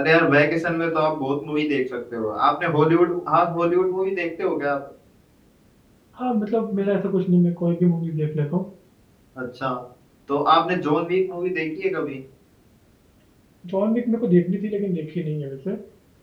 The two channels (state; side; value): identical; both; correlation 1.00